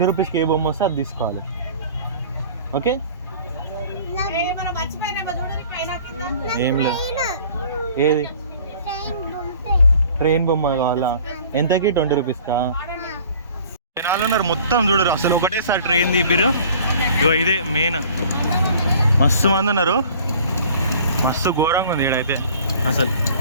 రూపీస్కి ఏ బొమ్మ వస్తే అది తీసుకోవాలి, ఓకే? ఏం లేదు. ఏది? ట్రైన్ బొమ్మ కావాలా? ఎంతకి? 20 రూపీస్కా? జనాలు ఉన్నారు మొత్తం, చూడరు అసలు. ఒకటేసారి ట్రైన్ తీపిరు. ఇగో ఇదే మెయిన్. మస్తు మంది ఉన్నారు, మస్తు ఘోరంగా ఉంది ఈడైతే. అసలు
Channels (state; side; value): inverted; both; correlation -0.49